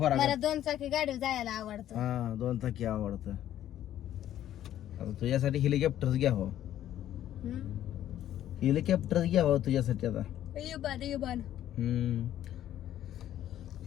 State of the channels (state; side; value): quieter; right; 11.9 dB